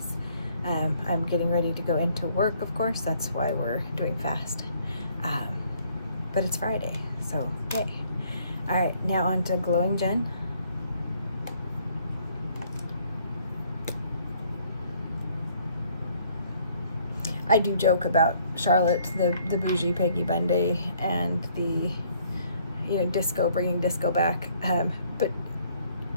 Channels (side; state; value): both; inverted; correlation -0.64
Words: I'm getting ready to go into work, of course. That's why we're doing fast. But it's Friday, so yay. All right, now on to Glowing Jen. I do joke about Charlotte, the bougie Peggy Bundy, and the, you know, disco, bringing disco back. But